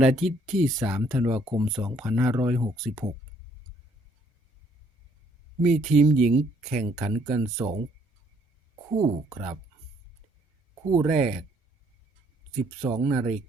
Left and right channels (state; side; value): normal; both; correlation 0.65